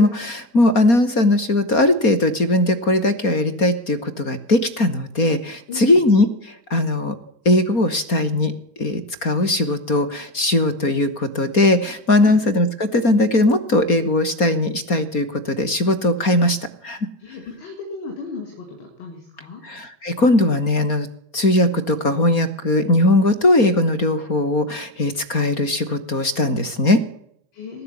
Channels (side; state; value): right; late; 4.3 ms